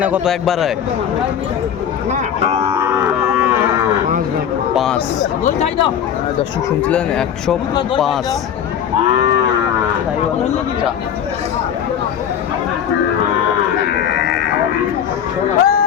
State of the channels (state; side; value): quieter; right; 8.9 dB